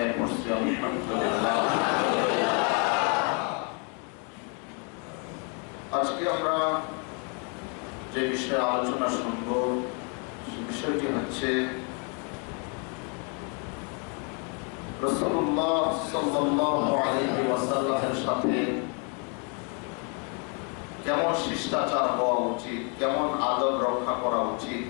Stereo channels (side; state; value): right; quieter; 37.3 dB